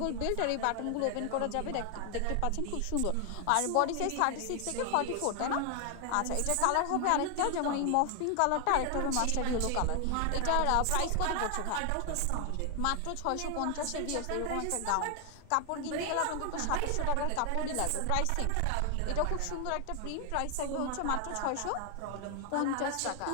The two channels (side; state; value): both; different; correlation 0.00